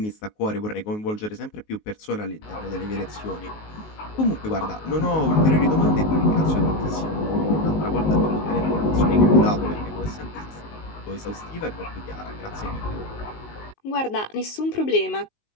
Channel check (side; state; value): right; late; 19 ms